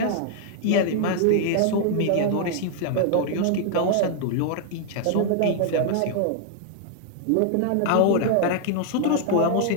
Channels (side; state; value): both; different; correlation -0.01